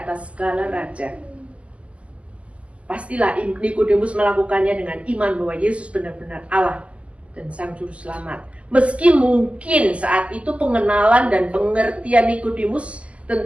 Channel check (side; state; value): left; late; 0.061 ms